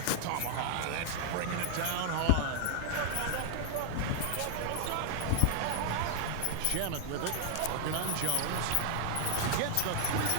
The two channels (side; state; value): both; different; correlation 0.00